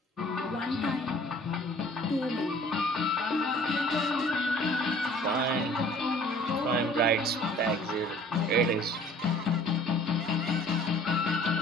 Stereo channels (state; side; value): normal; both; correlation 0.52